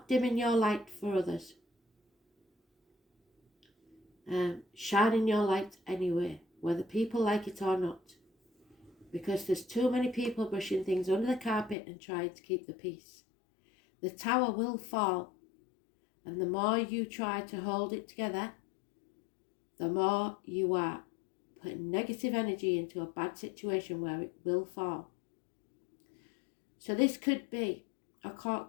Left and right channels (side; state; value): right; drops out; at 11.8 s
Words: dimming your light for others. Shining your light anyway, whether people like it or not. Because there's too many people brushing things under the carpet and trying to keep the peace. The tower will fall, and the more you try to hold it together, the more you are putting negative energy into a bad situation where it will fall. So this could be a